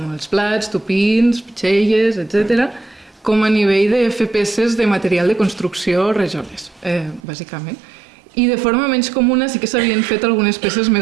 els plats, tupins, pitxelles, etc., com a nivell de fer peces de material de construcció, rajoles, bàsicament. I de forma menys comuna sí que s'havien fet algunes peces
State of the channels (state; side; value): drops out; left; at 7.2 s